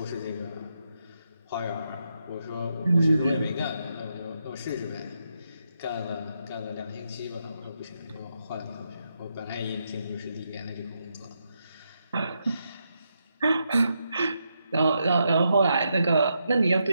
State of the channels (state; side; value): inverted; both; correlation -0.82